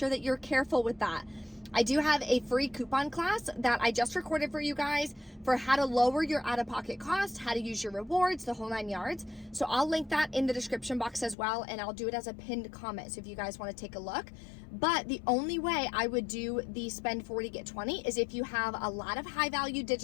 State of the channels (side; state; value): right; drops out; at 11.4 s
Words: that you're careful with that. I do have a free coupon class that I just recorded for you guys for how to lower your out-of-pocket cost, how to use your rewards, the whole 9 yards. So I'll link that in the description box as well, and I'll do it as a pinned comment so if you guys want to take a look. But the only way I would do the spend 40, get 20 is if you have a lot of high-value